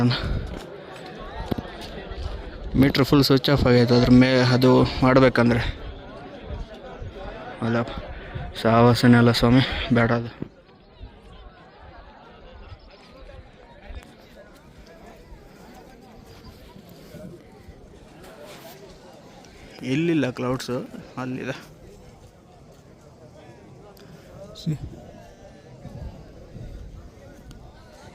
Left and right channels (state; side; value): identical; both; correlation 1.00